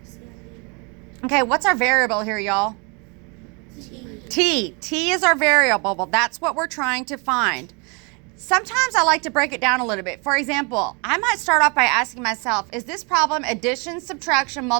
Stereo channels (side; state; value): left; quieter; 32.0 dB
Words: Sandy earned. Okay, what's our variable here, y'all? T. T is our variable. Well, that's what we're trying to find. Sometimes I like to break it down a little bit. For example, I might start off by asking myself, is this problem addition, subtraction,